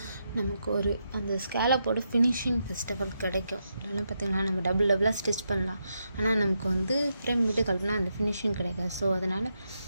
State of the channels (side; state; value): both; inverted; correlation -0.83